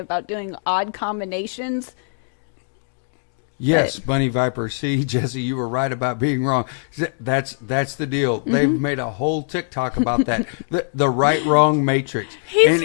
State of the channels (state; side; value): silent; right; digital silence